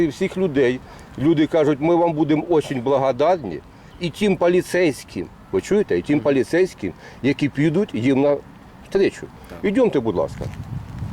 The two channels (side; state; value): both; identical; correlation 1.00